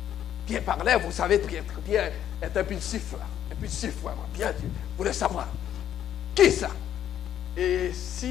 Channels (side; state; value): right; quieter; 10.4 dB